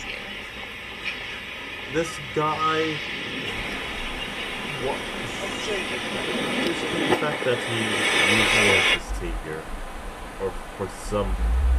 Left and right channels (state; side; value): identical; both; correlation 1.00